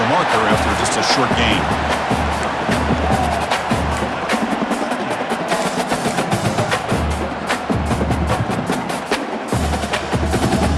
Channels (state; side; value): identical; both; correlation 1.00